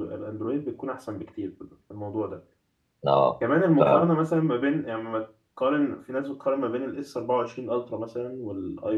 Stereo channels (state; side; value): identical; both; correlation 1.00